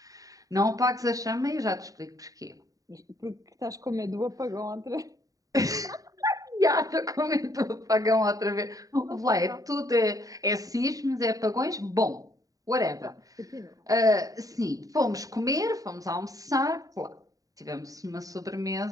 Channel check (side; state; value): left; late; 0.17 ms